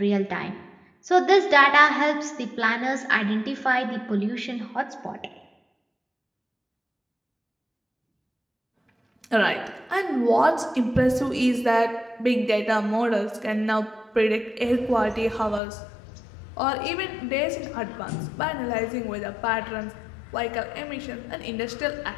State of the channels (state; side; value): drops out; right; at 15.6 s